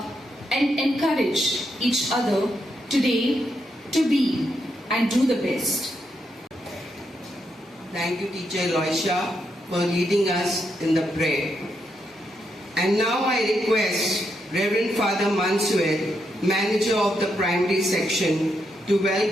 and encourage each other today to be and do the best. Thank you, Teacher Eloisha, for leading us in the prayer. And now I request Reverend Father Mansuel, Manager of the Primary Section, to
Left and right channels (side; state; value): both; normal; correlation 0.81